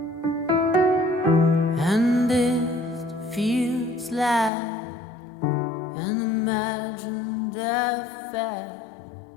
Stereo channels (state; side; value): drops out; right; at 4.5 s